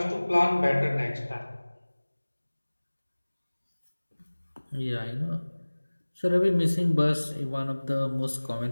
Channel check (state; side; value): inverted; both; correlation -1.00